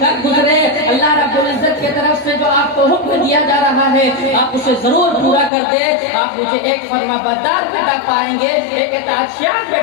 कर गुजरे। अल्लाह रब्बुल इज्जत की तरफ से जो आपको हुक्म दिया जा रहा है आप उसे जरूर पूरा कर दे। आप मुझे एक फर्माबरदार बेटा पाएंगे, एक इताअतशार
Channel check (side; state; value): right; drops out; at 5.5 s